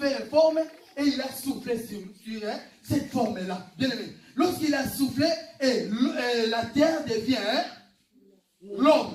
une forme et il a soufflé sur cette forme-là. Bien aimé. Lorsqu'il a soufflé, et la terre devient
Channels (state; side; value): identical; both; correlation 1.00